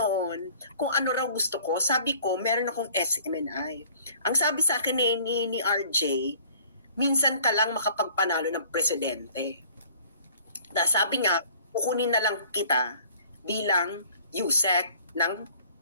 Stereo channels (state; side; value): inverted; both; correlation -0.52